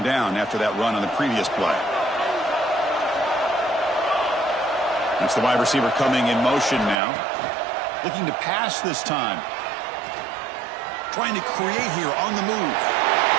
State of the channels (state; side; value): drops out; left; at 7.0 s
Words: down after that run on the previous play. That's the wide receiver coming in motion now. Looking to pass this time. Trying to create here on the move.